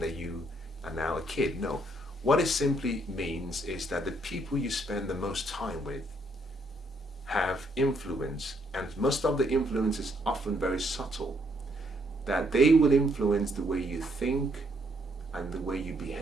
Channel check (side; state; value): both; normal; correlation 0.71